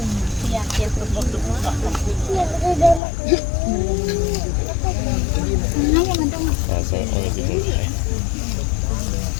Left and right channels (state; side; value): drops out; right; at 3.0 s